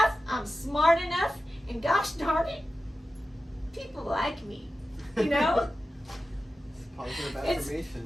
I'm smart enough, and gosh darn it, people like me. You know? Positive It's-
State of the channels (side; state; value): both; normal; correlation 0.93